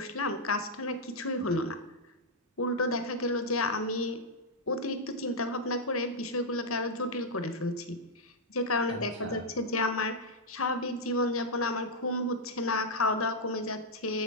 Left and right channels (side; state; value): both; normal; correlation -0.04